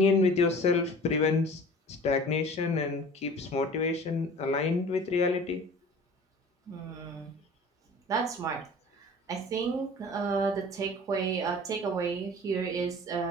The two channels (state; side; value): normal; both; correlation 0.43